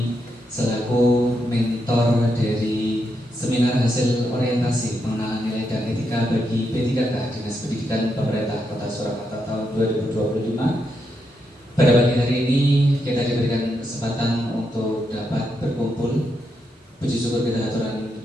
selaku mentor dari seminar hasil orientasi pengenalan nilai dan etika bagi P3K Dinas Pendidikan Pemerintah Kota Surakarta tahun 2025. Pada pagi hari ini kita diberikan kesempatan untuk dapat berkumpul. Puji syukur kita aturkan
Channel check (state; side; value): normal; both; correlation 0.82